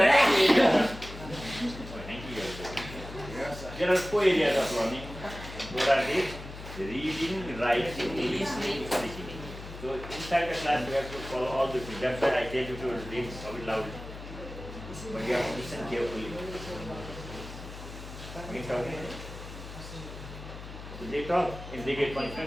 are four areas. There are four areas of learning. What are these? Reading, writing, listening, speaking. So inside the class, you have to follow all the things. That's why I tell you to read loudly. But you have to listen carefully. Okay? So they talk and they get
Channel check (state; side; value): noise; left; hum, 12 dB below the sound